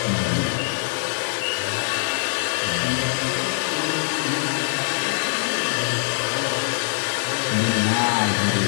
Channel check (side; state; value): right; silent; 63 dB below the other